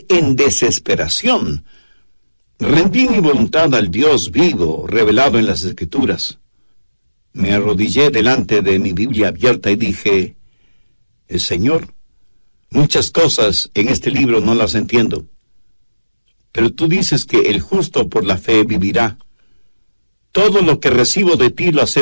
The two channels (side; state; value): both; inverted; correlation -1.00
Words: en desesperación, rendí mi voluntad al Dios vivo, revelado en las Escrituras. Me arrodillé delante de mi Biblia abierta y dije, Señor, muchas cosas en este libro no las entiendo, pero tú dices que el justo por la fe vivirá. Todo lo que recibo de ti lo